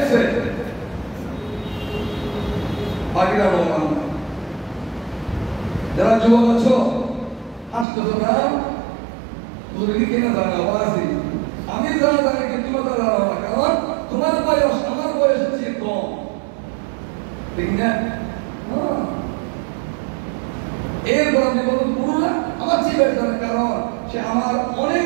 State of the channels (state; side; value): drops out; left; at 7.9 s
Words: বাকিরা রোমান। যারা যুবক আছো আসতেছো না, তুমি কেনা জানা বাসি, আমি জানা জানি কিন্তু তোমরা জানো না, কারণ তোমার বয়স আমার বয়সের চেয়ে কম, ঠিক না? এরপর আপনি বলুন পুরোটা আমার চেয়ে বেশ জানে, কারণ সে আমার